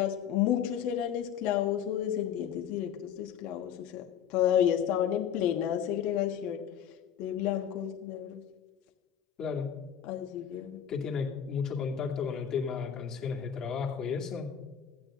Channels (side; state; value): right; quieter; 9.0 dB